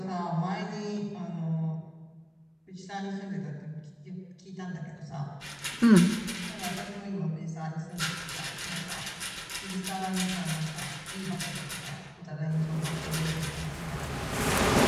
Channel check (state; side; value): identical; both; correlation 1.00